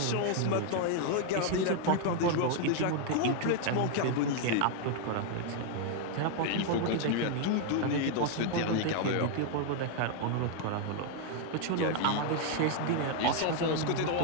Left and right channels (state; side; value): different; both; correlation 0.00